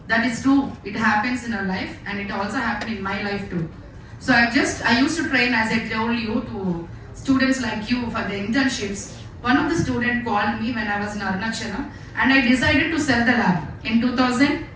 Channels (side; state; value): both; identical; correlation 1.00